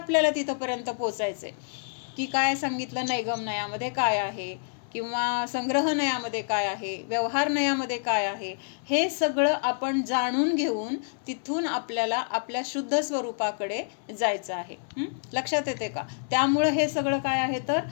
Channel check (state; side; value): silent; right; 60 dB below the other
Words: तिथपर्यंत पोचायचंय की काय सांगितलं, नैगम नयामध्ये काय आहे किंवा संग्रह नयामध्ये काय आहे, व्यवहार नयामध्ये काय आहे, हे सगळं आपण जाणून घेऊन तिथून आपल्याला आपल्या शुद्ध स्वरूपाकडे जायचं आहे. लक्षात येते का? त्यामुळं हे सगळं काय आहे तर